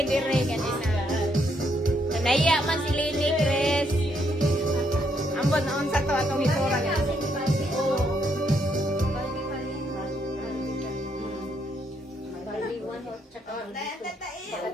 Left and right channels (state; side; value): normal; both; correlation 0.75